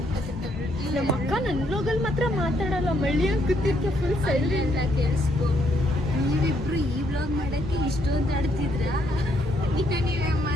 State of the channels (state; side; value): normal; both; correlation 0.72